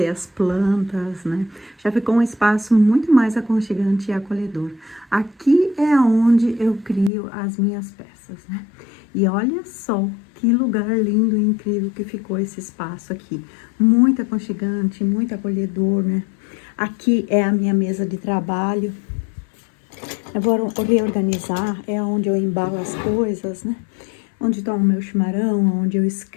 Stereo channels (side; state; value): right; drops out; at 7.1 s